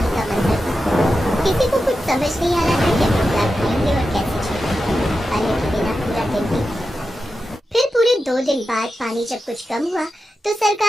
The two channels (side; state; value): both; normal; correlation 0.91